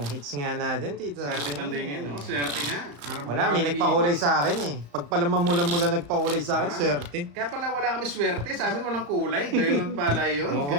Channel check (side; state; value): left; late; 35 ms